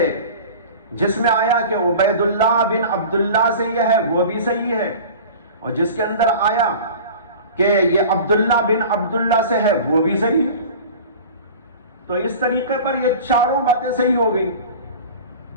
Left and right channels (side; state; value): both; inverted; correlation -0.38